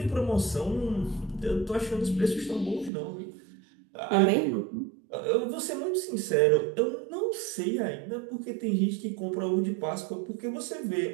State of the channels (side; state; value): left; drops out; at 2.9 s